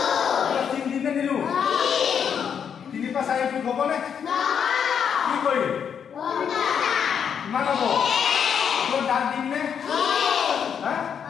3 দিম নে নিদিওঁ 3 পৰা 4 যোগ হ'ব নে কি কৰিম কিমান হ'ব ওপৰত দাগ দিম নে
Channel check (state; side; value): quieter; right; 7.6 dB